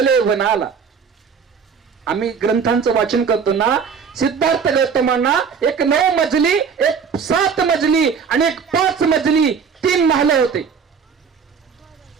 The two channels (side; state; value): left; quieter; 6.3 dB